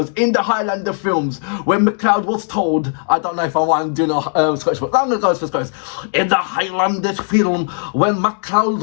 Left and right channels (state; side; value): silent; right; 60 dB below the other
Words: in the Highlander films, when McLeod was told, I don't know if I want to do a Scottish, but I'm going to go for Scottish. In the Highlanders film, when McLeod